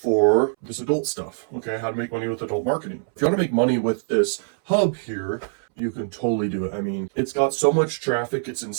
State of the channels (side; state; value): left; silent; 63 dB below the other